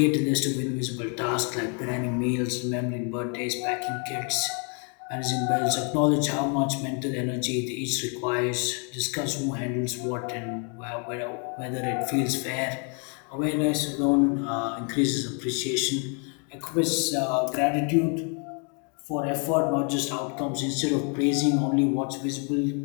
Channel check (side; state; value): right; quieter; 38.7 dB